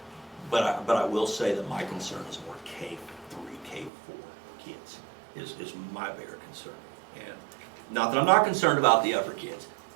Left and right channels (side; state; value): left; drops out; at 3.9 s